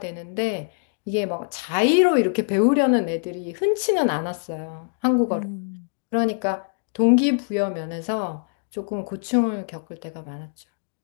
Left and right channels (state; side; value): silent; right; digital silence